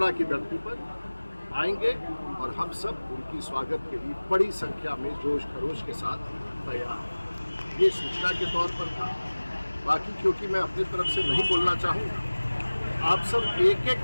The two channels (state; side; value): inverted; both; correlation -1.00